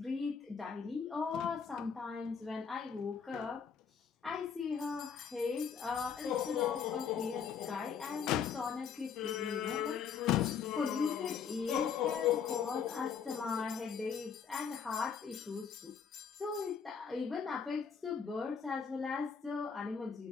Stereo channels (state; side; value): quieter; right; 6.7 dB